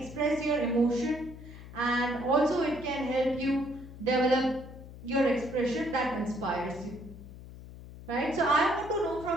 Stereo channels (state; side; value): noise; left; hum, 15 dB below the sound